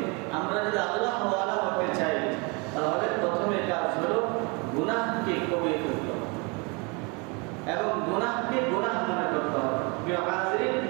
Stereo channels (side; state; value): left; quieter; 30.5 dB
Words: আমরা যদি আল্লাহ ওয়ালা হতে চাই, তাহলে প্রথমে কাজ হলো গুনাহকে কমিয়ে ফেলতে হবে এবং গুনাহকে গুনাহ মনে করতে হবে। প্রিয় হাজিরিন,